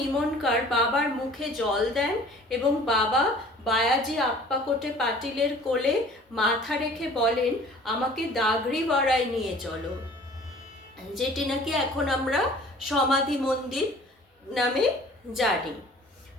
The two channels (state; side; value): normal; both; correlation 0.49